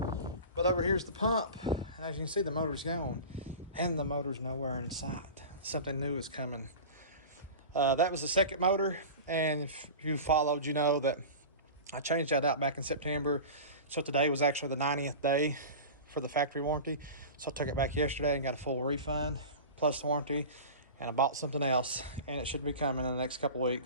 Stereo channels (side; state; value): both; inverted; correlation -0.32